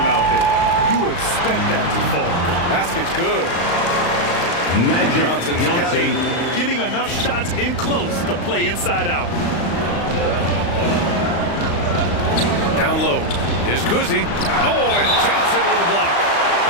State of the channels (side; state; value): right; late; 35 ms